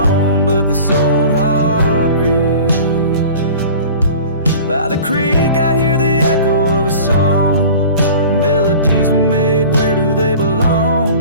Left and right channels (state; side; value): inverted; both; correlation -0.42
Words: but this old heart grieves. By the creek I hear the echo of a song, melodies we made, where do they